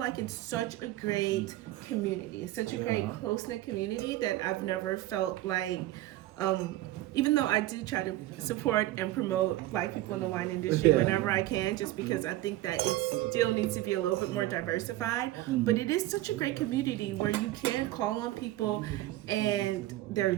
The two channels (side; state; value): left; quieter; 16.1 dB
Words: it's such a great community. It's such a great close-knit community that I've never felt like. Even though I do try to support and promote Black people in the wine industry whenever I can, just because I think that it still needs to be a little bit more diversified. But it is such a great community where you can call on people and they're